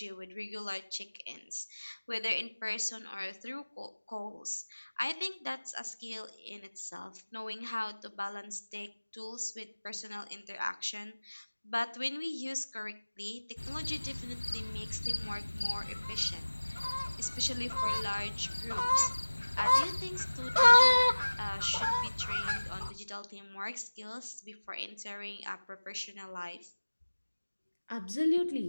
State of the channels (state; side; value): inverted; both; correlation -1.00